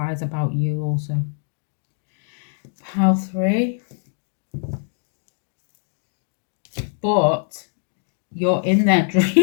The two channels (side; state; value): right; silent; digital silence